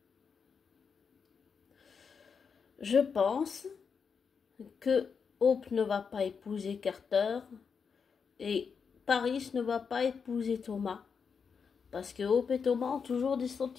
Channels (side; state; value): right; quieter; 6.0 dB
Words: Je pense que Hope ne va pas épouser Carter et Paris ne va pas épouser Thomas. Parce que Hope et Thomas ont toujours des